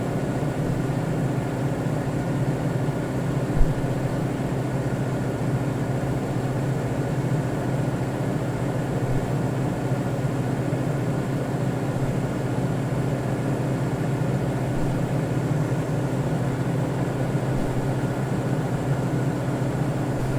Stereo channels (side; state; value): both; identical; correlation 1.00